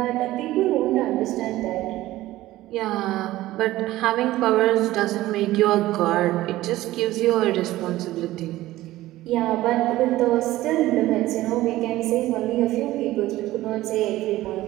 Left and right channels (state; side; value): quieter; left; 16.2 dB